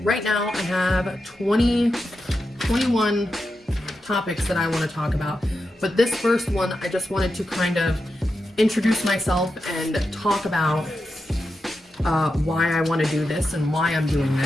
right now I have 21 topics that I want to talk about. But this first one, I just wanted to kind of introduce myself and talk about why I want to do this and why I'm doing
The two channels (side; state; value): both; normal; correlation 0.88